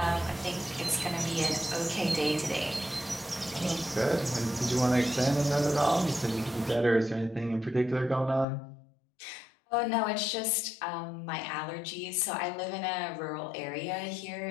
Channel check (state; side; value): drops out; right; at 8.5 s